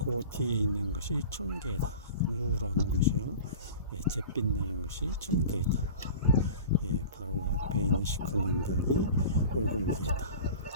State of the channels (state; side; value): inverted; both; correlation -0.38